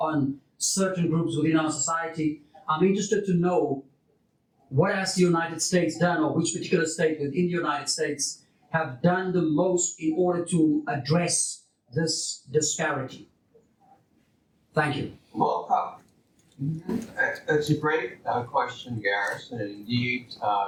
certain groups within our society, I'm interested to know what has the United States done, or which particular state within the United States have done the most in order to address this disparity? Thank you. well, that's a great question, Gareth. And indeed,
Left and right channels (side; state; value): both; identical; correlation 1.00